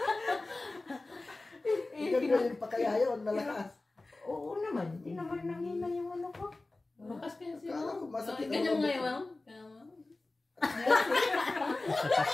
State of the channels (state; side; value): quieter; right; 3.1 dB